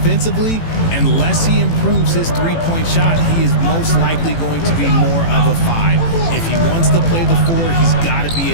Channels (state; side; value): late; right; 18 ms